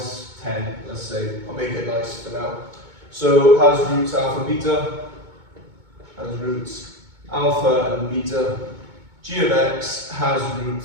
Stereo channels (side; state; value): left; late; 2.2 ms